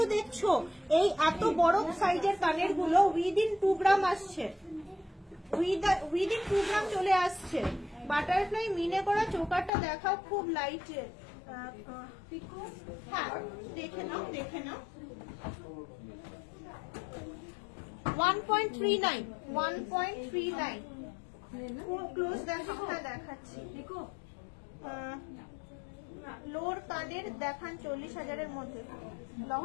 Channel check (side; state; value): right; drops out; at 9.7 s